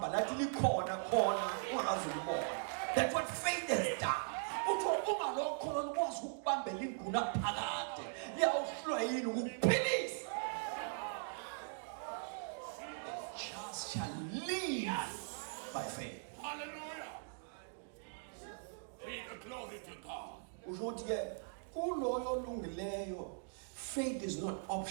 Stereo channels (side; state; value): left; silent; digital silence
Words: lathi likhona khona ungakazi ulibona. That's what faith has done. Uthi ungalokholo lukwazi ukubambela ingunaphakade liyawuhlwa yini ukuphilisa. Just shall live by faith. Hallelujah. Be the glory to God. usho ukuthi ke kuloyo olungileyo faith is not